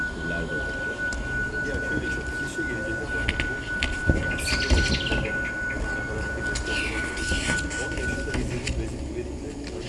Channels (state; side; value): identical; both; correlation 1.00